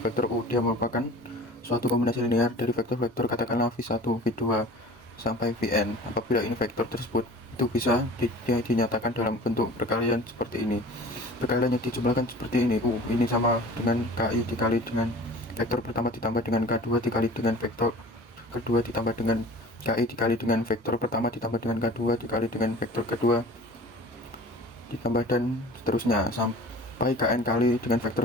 U. Dia merupakan suatu kombinasi linear dari vektor-vektor katakanlah V1, V2 sampai Vn. Apabila ini vektor tersebut itu bisa dinyatakan dalam bentuk perkalian seperti ini. Perkalian yang dijumlahkan seperti ini, U ini sama dengan KI dikali dengan vektor pertama ditambah dengan K2 dikali dengan vektor kedua ditambah dengan KI dikali dengan vektor pertama ditambah dengan K2 dikali dengan vektor kedua ditambah dan seterusnya sampai Kn kali dengan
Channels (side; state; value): both; normal; correlation 0.43